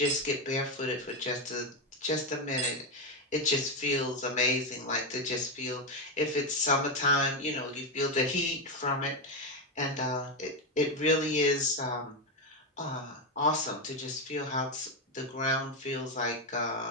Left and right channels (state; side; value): normal; both; correlation 0.09